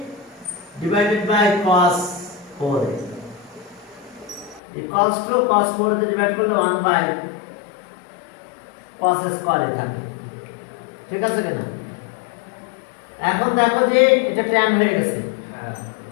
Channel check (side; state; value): right; drops out; at 4.6 s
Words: divided by cos 4a equals to cos 4 দিয়ে ডিভাইড করলে 1 by cos square থাকে, ঠিক আছে কিনা? এখন দেখো যে এটা tan হয়ে গেছে,